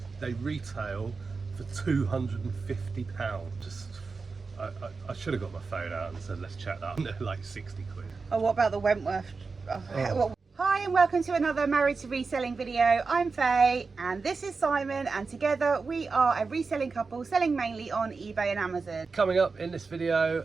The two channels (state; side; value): quieter; left; 4.5 dB